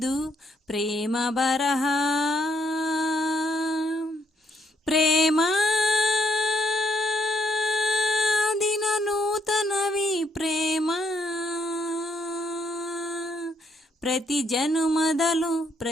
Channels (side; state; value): both; normal; correlation 0.73